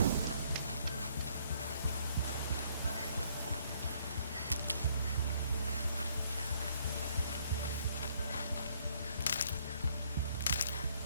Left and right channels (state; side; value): inverted; both; correlation -0.66